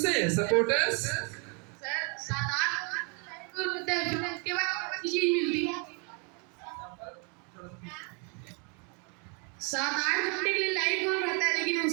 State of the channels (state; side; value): quieter; left; 32.8 dB